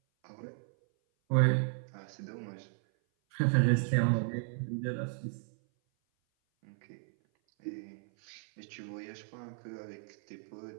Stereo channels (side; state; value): left; silent; 55 dB below the other